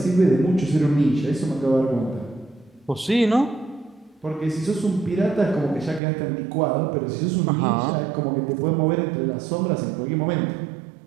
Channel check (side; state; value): left; drops out; at 6.0 s